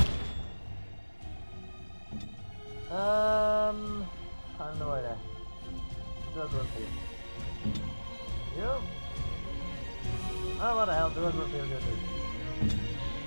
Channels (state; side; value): inverted; both; correlation -1.00